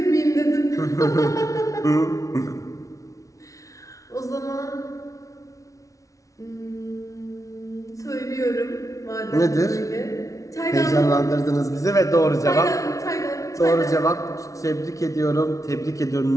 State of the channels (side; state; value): right; late; 0.16 ms